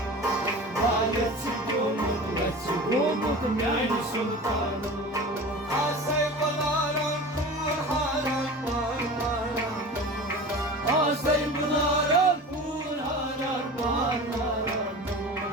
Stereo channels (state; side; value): normal; both; correlation 0.35